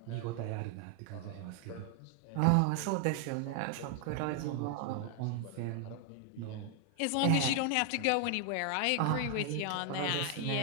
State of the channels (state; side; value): different; both; correlation 0.00